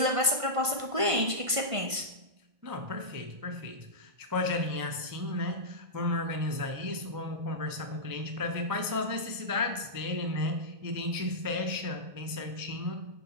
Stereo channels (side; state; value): left; late; 1.5 ms